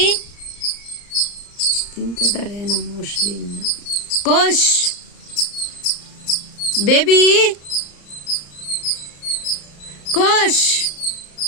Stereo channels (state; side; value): late; right; 34 ms